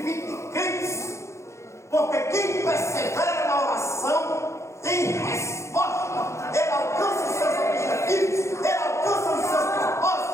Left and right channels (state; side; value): late; right; 0.14 ms